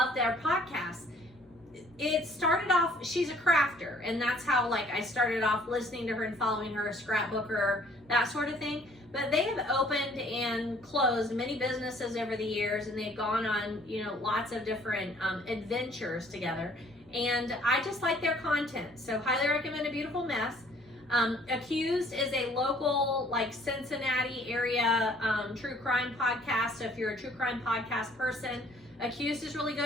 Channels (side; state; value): both; normal; correlation 0.59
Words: their podcast. It started off, she's a crafter, and that's how I started off listening to her and following her, a scrapbooker, that sort of thing. But they have opened and closed many businesses over the years, and they've gone on, lots of different adventures together. And I just like their content. So highly recommend A Beautiful Mess. Accused is a local, Cincinnati area true crime podcast. So if you're a true crime podcast person, Accused is really